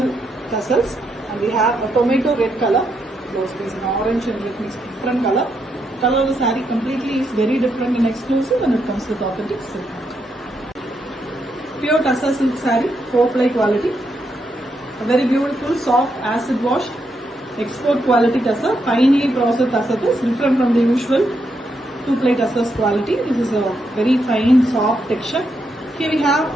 tassels, and we have a tomato red color blouse piece, an orange and red mixed different color. The color of the saree completely is very different and exclusive, and it comes with authentic silk. Pure tussar silk saree, 4-ply quality. A very beautiful soft acid wash export quality tussar, finely processed tussar is different from the usual 2-ply tussars quality. This is a very fine soft texture. Here we have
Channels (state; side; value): normal; both; correlation 0.80